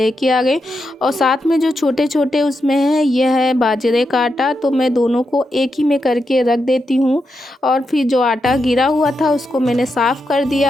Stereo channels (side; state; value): both; normal; correlation 0.85